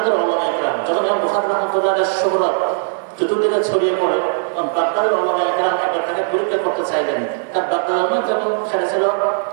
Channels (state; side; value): silent; left; digital silence